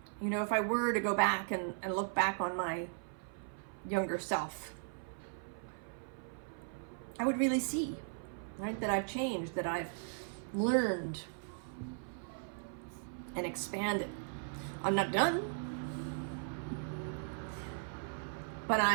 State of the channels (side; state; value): left; silent; 53 dB below the other